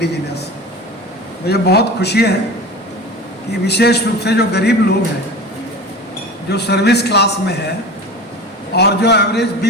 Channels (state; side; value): normal; both; correlation 0.34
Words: मुझे बहुत खुशी है कि विशेष रूप से जो गरीब लोग हैं, जो सर्विस क्लास में है और जो एवरेज